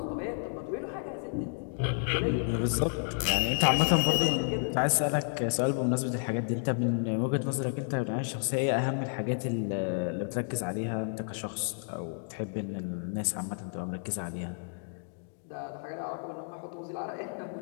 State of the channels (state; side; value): silent; right; digital silence